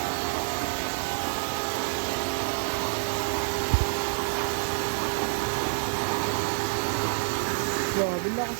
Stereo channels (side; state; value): left; silent; digital silence